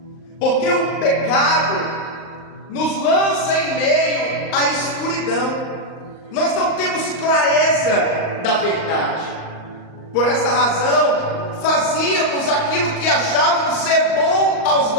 porque o pecado nos lança em meio à escuridão. Nós não temos clareza da verdade. Por esta razão, fazíamos aquilo que achávamos ser bom aos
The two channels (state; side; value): late; right; 38 ms